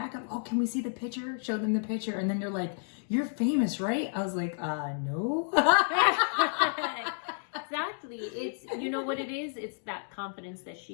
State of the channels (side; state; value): right; silent; digital silence